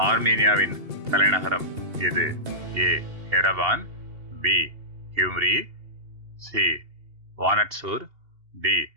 ஆர்மீனியாவின் தலைநகரம் எது? A Yerevan, B Gyumri, C வானட்சூர், D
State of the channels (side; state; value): left; late; 2.8 ms